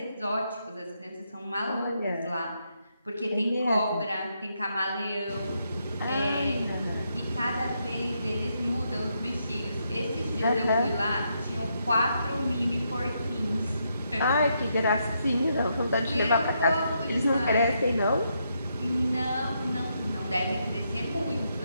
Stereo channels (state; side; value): inverted; both; correlation -0.79